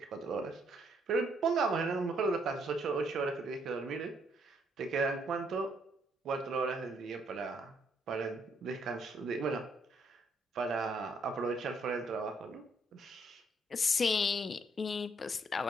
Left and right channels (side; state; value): both; normal; correlation 0.71